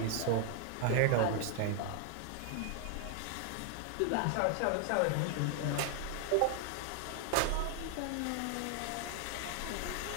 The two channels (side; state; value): both; different; correlation 0.00